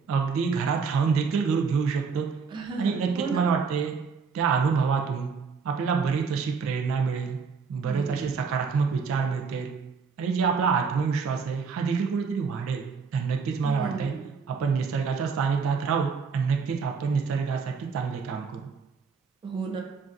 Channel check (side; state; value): left; quieter; 5.4 dB